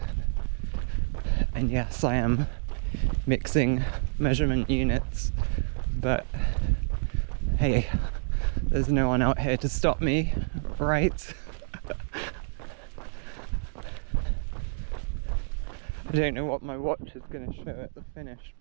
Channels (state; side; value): silent; left; digital silence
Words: And yes, I am mixing measurement units, but hey, there's no one out here to stop me, right? I don't know what my watch is going to show at the finish,